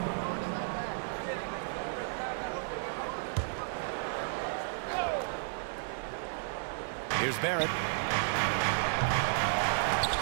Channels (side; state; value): left; silent; digital silence